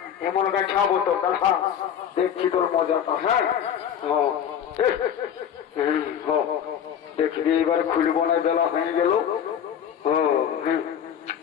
এমন খাবো তো দাদা দেখছি তোর মজাটা হ্যাঁ দেখবি এবার খুলব না বেলা হয়ে গেল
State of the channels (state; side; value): quieter; right; 8.9 dB